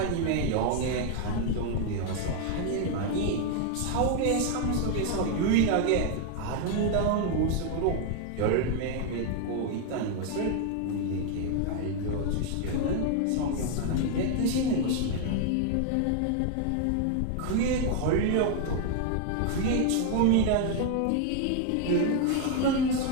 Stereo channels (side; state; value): both; different; correlation 0.00